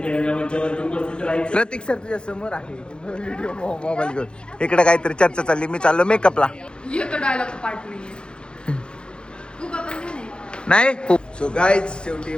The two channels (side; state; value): right; late; 0.052 ms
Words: रंगमंचावरती उपस्थित राहायचे. प्रतीक सर तुझ्या समोर आहे व्हिडिओ मोबाईल घेऊन. इकडे काहीतरी चर्चा चालली. मी चाललो मेकअपला. येतो डायलॉग पार्ट नाहीये. तू का पण नाही सो गाईज शेवटी